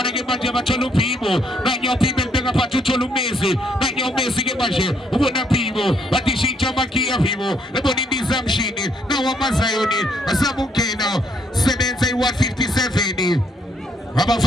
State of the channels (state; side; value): normal; both; correlation 0.71